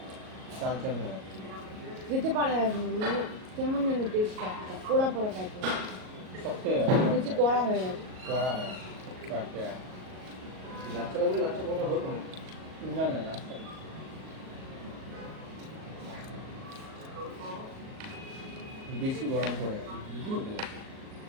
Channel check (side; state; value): left; late; 38 ms